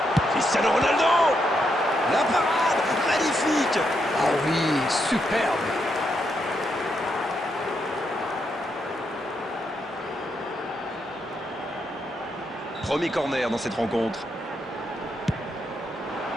Cristiano Ronaldo! La parade! Magnifique! Ah oui, superbe. Premier corner dans cette rencontre.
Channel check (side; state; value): both; normal; correlation 0.80